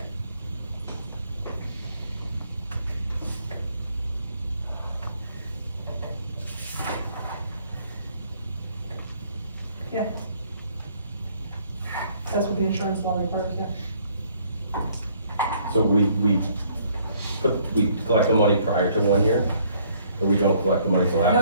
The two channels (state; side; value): inverted; both; correlation -0.63